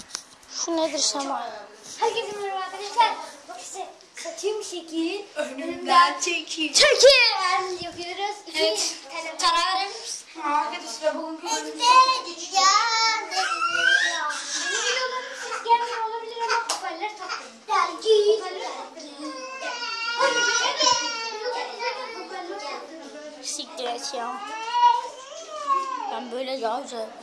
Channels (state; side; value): identical; both; correlation 1.00